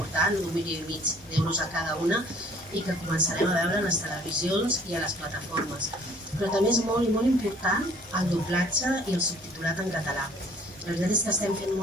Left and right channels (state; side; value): normal; both; correlation 0.57